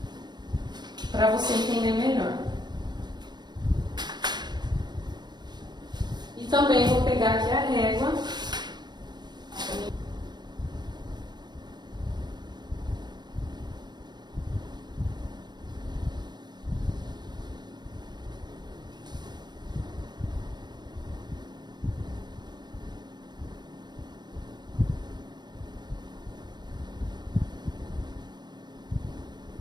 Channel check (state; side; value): late; left; 0.21 ms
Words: para você entender melhor. E também vou pegar aqui a régua.